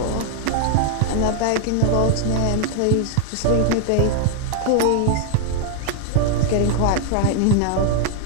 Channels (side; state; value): both; different; correlation 0.00